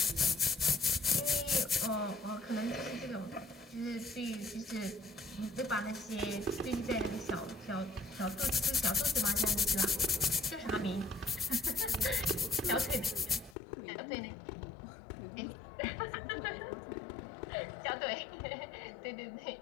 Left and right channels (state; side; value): drops out; right; at 13.6 s